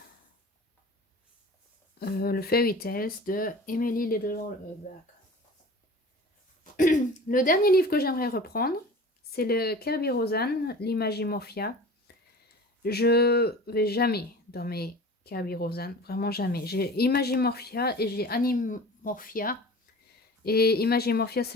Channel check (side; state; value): both; normal; correlation 0.39